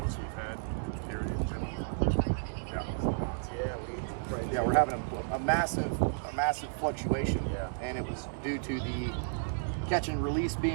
we've had. Period. Yeah, we're having a massive fluctuation, and it was due to the catch and release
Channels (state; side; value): silent; left; digital silence